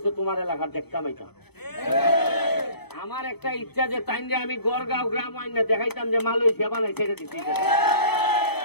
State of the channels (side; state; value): right; late; 0.97 ms